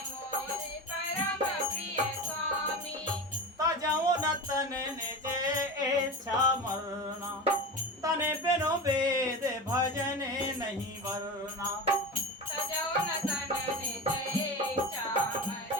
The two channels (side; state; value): both; normal; correlation 0.27